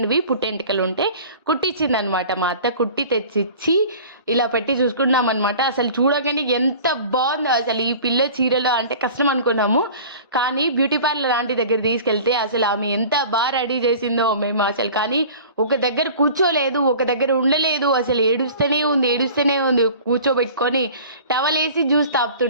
పుట్టెంటికలు ఉంటే కుట్టించింది అనమాట మా అత్త. కుట్టి తెచ్చిచ్చి ఇలా పెట్టి చూసుకున్నాం అనమాట. అసలు చూడగానే ఎంత బాగుందో అసలు ఈ పిల్ల చీరలో, అంటే కష్టం అనుకున్నాము, కానీ బ్యూటీ పార్లర్ లాంటి దగ్గర తీసుకెళ్తే అసలు ఆమె ఎంత బాగా రెడీ చేసిందో మేము అసలు. కానీ ఒక దగ్గర కూర్చోలేదు, ఒక దగ్గర ఉండలేదు, అసలు ఏడుస్తూనే ఉంది. కూర్చోబెట్టుకొని టవల్ వేసి జ్యూస్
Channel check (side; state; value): both; inverted; correlation -0.43